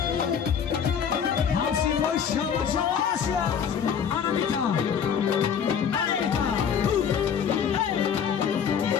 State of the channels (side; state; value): right; quieter; 7.6 dB